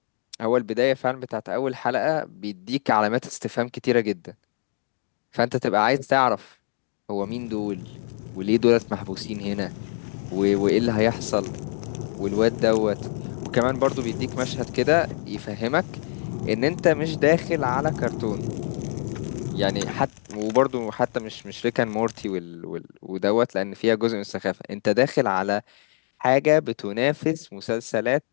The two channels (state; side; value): silent; right; digital silence